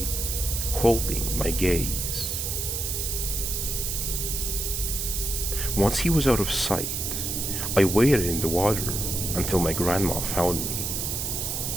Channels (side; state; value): right; noise; hiss, 2 dB below the sound